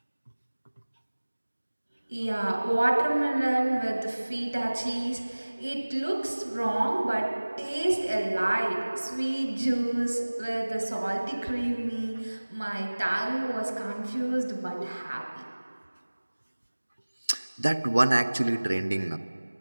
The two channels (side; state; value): both; inverted; correlation -1.00